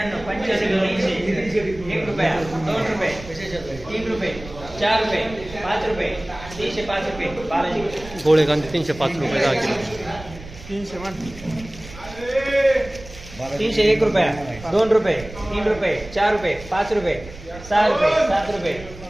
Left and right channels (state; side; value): noise; right; rumble, 16 dB below the sound